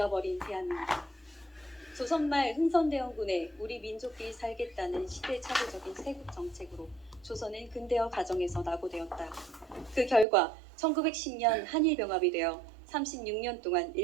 대한민국. 조선말 흥선대원군에 우리 민족끼리 살겠다는 시대착오적인 세국 정책으로 조선은 근대화 과정에서 낙오되었다. 그 결과 1910년 한일병합이 되어 36년 동안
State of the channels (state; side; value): drops out; left; at 10.2 s